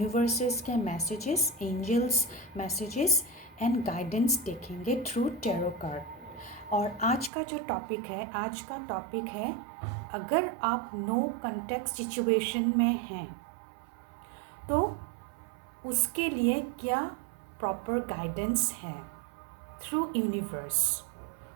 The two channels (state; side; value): drops out; left; at 7.3 s